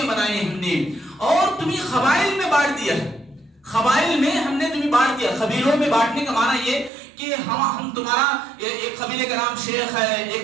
بنائے ہم نے، اور تمہیں قبائل میں بانٹ دیا ہے۔ قبائل میں ہم نے تمہیں بانٹ دیا۔ قبیلوں میں بانٹنے کا معنی یہ کہ ہم تمہارا ایک قبیلے کا نام شیخ ہے،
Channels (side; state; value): left; drops out; at 6.9 s